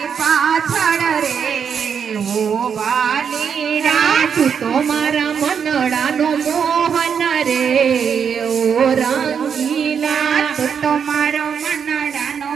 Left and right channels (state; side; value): quieter; left; 7.1 dB